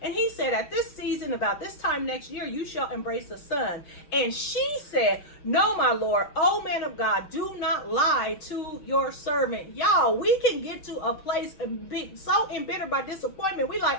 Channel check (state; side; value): late; right; 6.8 ms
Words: he said, at this season, about this time next year, you shall embrace a son. And she said, no, my Lord, O man of God, do not lie to your servant. Y'all, we can get to a place and be so embittered by disappointment. We